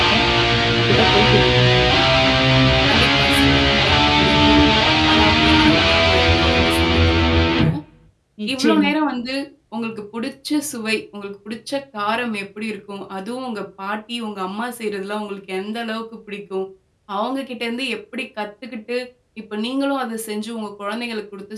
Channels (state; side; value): identical; both; correlation 1.00